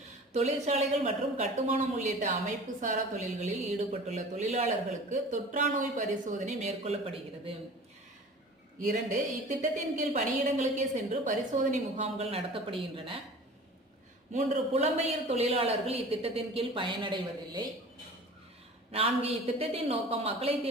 தொழிற்சாலைகள் மற்றும் கட்டுமானம் உள்ளிட்ட அமைப்பு சாரா தொழில்களில் ஈடுபட்டுள்ள தொழிலாளர்களுக்கு தொற்றா நோய் பரிசோதனை மேற்கொள்ளப்படுகிறது. 2, இத்திட்டத்தின் கீழ் பணியிடங்களுக்கே சென்று பரிசோதனை முகாம்கள் நடத்தப்படுகின்றன. 3, புலம்பெயர் தொழிலாளர்கள் இத்திட்டத்தின் கீழ் பயனடைவதில்லை. 4 இத்திட்டத்தின் நோக்கம் மக்களை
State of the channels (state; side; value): normal; both; correlation 0.41